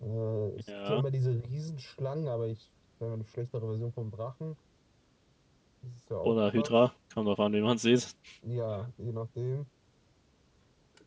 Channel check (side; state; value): both; identical; correlation 1.00